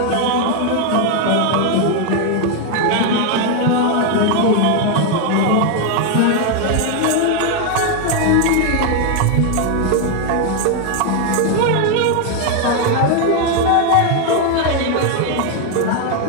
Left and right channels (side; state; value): both; different; correlation 0.01